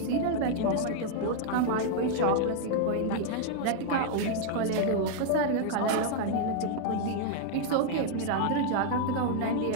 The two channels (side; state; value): both; different; correlation 0.00